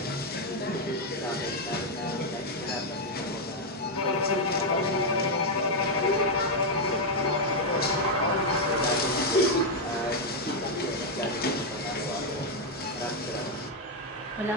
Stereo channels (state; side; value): normal; both; correlation 0.01